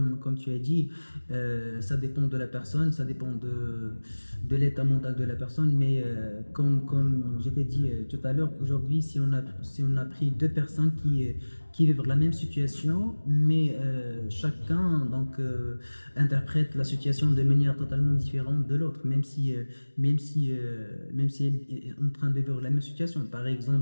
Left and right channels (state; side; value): inverted; both; correlation -1.00